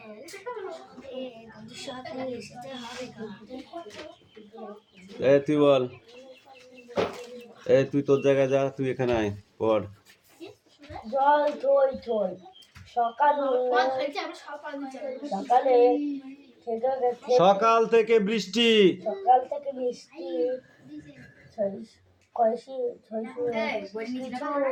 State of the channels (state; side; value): identical; both; correlation 1.00